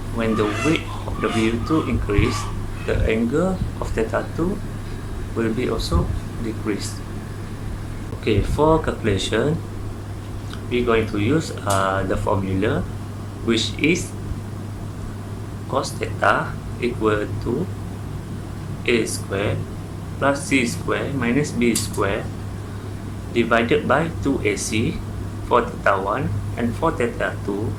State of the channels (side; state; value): both; identical; correlation 1.00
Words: when the weight of W2 increase, the angle of theta 2 will be also decreased. Okay, for calculation, we're going to use the formula, which is cos theta equal to a square plus c square minus b square divided by 2ac for theta 1, and for theta 2